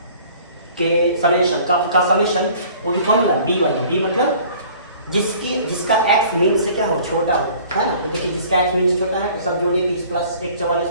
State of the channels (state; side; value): inverted; both; correlation -0.51